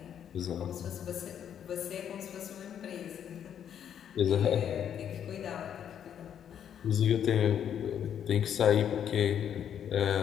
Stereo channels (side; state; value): right; quieter; 9.1 dB